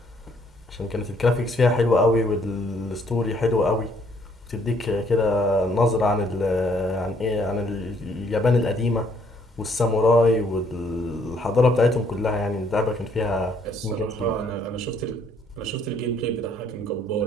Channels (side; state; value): both; normal; correlation 0.66